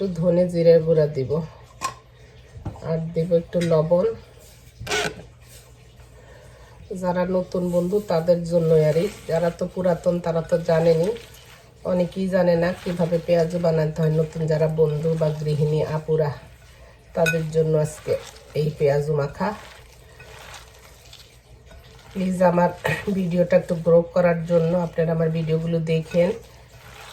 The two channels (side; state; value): both; identical; correlation 1.00